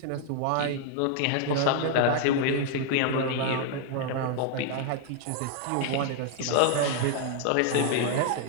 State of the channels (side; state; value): both; different; correlation 0.00